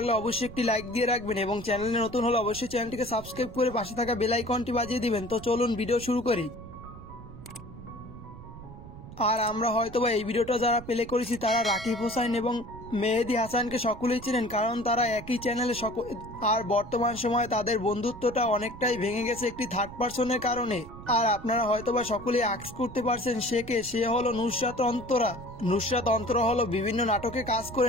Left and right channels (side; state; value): right; noise; rumble, 15 dB below the sound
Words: অবশ্যই একটি লাইক দিয়ে রাখবেন এবং চ্যানেলে নতুন হলে অবশ্যই চ্যানেলটিকে সাবস্ক্রাইব করে পাশে থাকা বেল আইকনটি বাজিয়ে দিবেন। তো চলুন ভিডিও শুরু করি। আর আমরা হয়তোবা এই ভিডিওটা যারা প্লে করেছি তারা রাকিব হোসেন এবং মেহেদী হাসানকে সকলেই চিনেন, কারণ তারা একই চ্যানেলে আর বর্তমান সময়ে তাদের বন্ধুত্বটা অনেকটাই ভেঙে গেছে একটি থার্ড পার্সনের কারণে। আর আপনারা হয়তোবা সকলেই আক্স করতে পারছেন সে হলো নুসরাত অন্তরা। নুসরাত অন্তরা হলো বিভিন্ন নাটকে কাজ